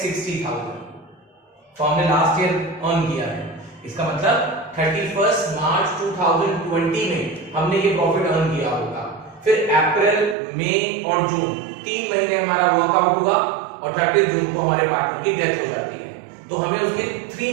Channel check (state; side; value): drops out; left; at 10.4 s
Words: तो हमने लास्ट ईयर अर्न किया है, इसका मतलब 31 मार्च 2020 में हमने ये प्रॉफिट अर्न किया होगा। फिर अप्रैल, मई और जून 3 महीने हमारा वर्कआउट हुआ और 30 जून को हमारे पार्टनर की डेथ हो जाती है। तो हमें उसके 3